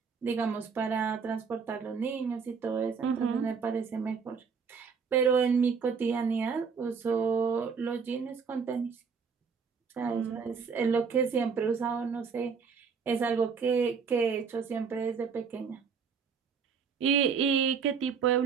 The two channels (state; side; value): quieter; left; 5.8 dB